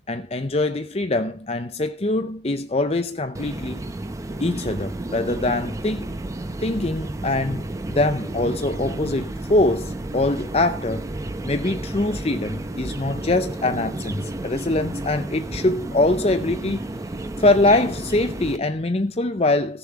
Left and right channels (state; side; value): normal; both; correlation 0.42